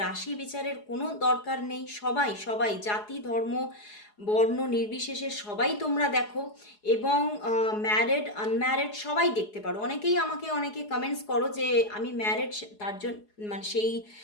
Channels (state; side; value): late; right; 4.8 ms